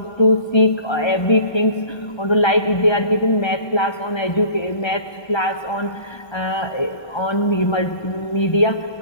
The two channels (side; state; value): right; late; 1.3 ms